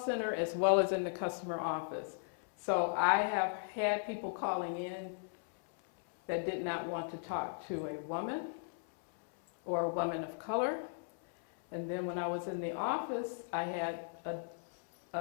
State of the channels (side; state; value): right; silent; 53 dB below the other